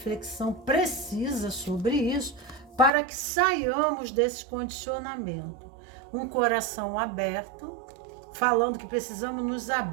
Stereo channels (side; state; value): left; drops out; at 2.9 s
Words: precisa sobre isso para que saiamos desse condicionamento. Um coração aberto, falando que precisamos nos